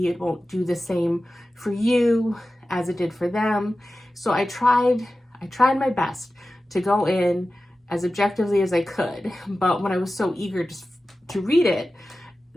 it won't do the same for you as it did for them. So I tried my best to go in as objectively as I could, but when I was so eager to read it,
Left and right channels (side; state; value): both; normal; correlation 0.95